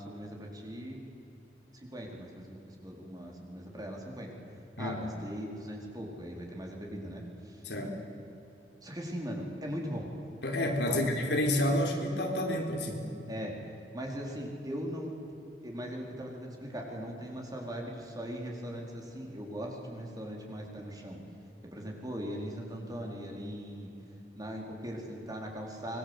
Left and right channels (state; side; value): normal; both; correlation 0.56